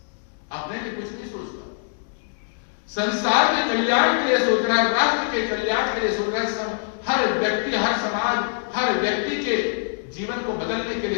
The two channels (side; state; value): right; silent; digital silence